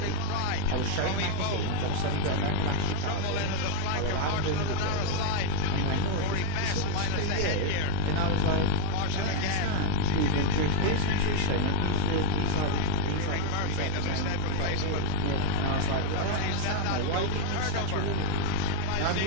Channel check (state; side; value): different; both; correlation 0.00